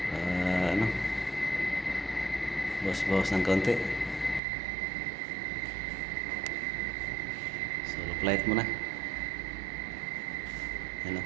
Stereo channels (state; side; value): drops out; left; at 4.4 s